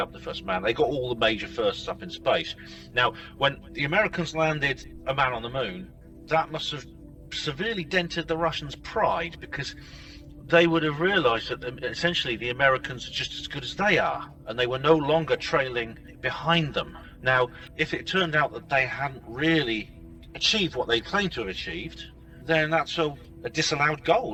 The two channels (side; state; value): both; identical; correlation 1.00